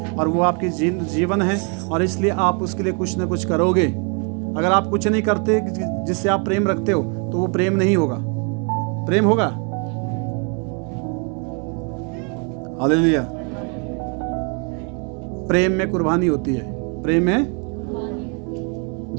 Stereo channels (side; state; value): left; quieter; 37.3 dB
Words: और वो आपकी जीवन है, और इसलिए आप उसके लिए कुछ ना कुछ करोगे। अगर आप कुछ नहीं करते जिससे आप प्रेम रखते हो तो वो प्रेम नहीं होगा। प्रेम होगा? हालेलुया। प्रेम में कुर्बानी होती है। प्रेम में